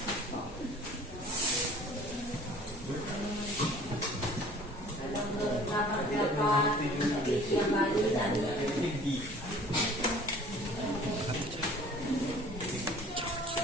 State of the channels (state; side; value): normal; both; correlation 0.49